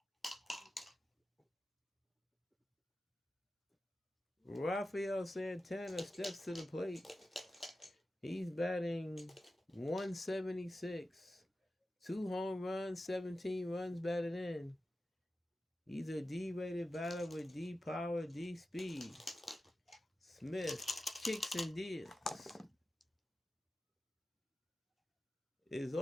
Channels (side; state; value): both; normal; correlation 0.93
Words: Rafael Santana steps to the plate. He's batting .176. 2 home runs, 17 runs batted in. He's a D-rated batter with D power, D speed. Smith kicks and deals. Is